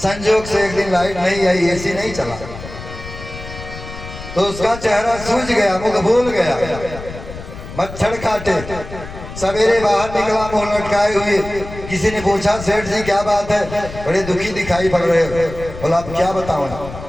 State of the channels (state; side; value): noise; left; rumble, 12 dB below the sound